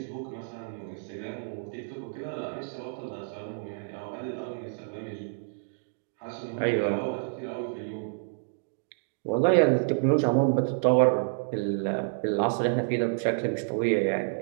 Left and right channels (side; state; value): left; silent; digital silence